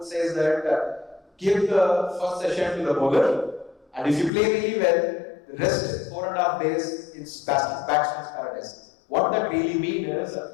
says that give the first session to the bowler, and if you play really well, the rest 4.5 days it's batsman's paradise. What that really means is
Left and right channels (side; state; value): right; drops out; at 4.3 s